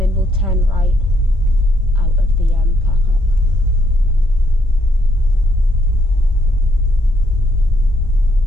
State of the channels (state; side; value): normal; both; correlation 0.72